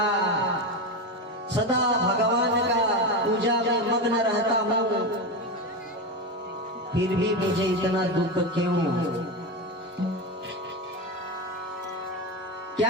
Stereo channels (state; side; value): normal; both; correlation 0.17